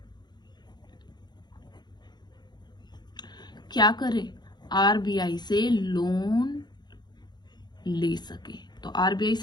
क्या करे? आरबीआई से लोन ले सके। तो आरबीआई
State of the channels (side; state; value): right; late; 0.21 ms